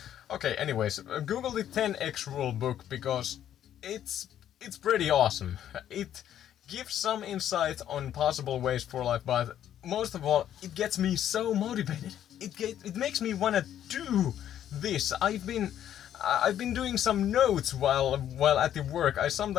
Okay, anyways, Google the 10x Rule book because it's pretty awesome. It gives some insight on possible ways for life, but most of all, it gets me so motivated. It makes me wanna do this. I've been doing some notes while at the work. I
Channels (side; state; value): right; quieter; 10.7 dB